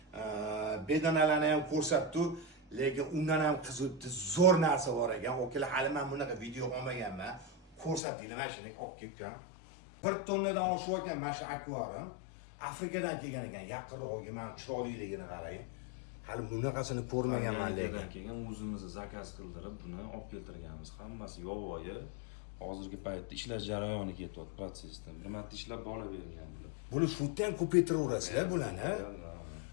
bedanalarni ham ko'rsatdim. Lekin undan ham qiziqdi zo'r narsa bor ekan. O'kalar hali men bunaqa video olmaganman. Ko'rsatdinglar mana shuni olib kelgan. 1 tonnadan oshib ekan mana shu akvarium. Afrikadan kelgan ekan. Yaqinroqga men chiroyliligini qarang. Hali bunaqasini ko'rmaganman lekin. Keyin o'zimiz zakaz qildirib buni olib keltirganmiz. Hammasi yovvoyi. Hozirgi paytda ishlar jarayoni ketyapti protsessdan. Bir marta ishlab bolavergan bular. Buni shutda ham ko'paytiraverasizlar bularni.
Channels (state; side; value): drops out; right; at 8.0 s